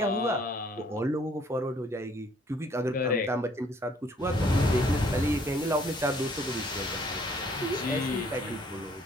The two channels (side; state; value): both; normal; correlation 0.62